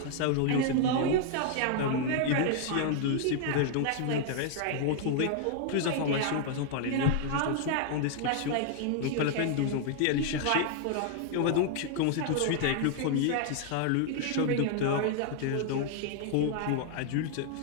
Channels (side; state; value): both; different; correlation 0.00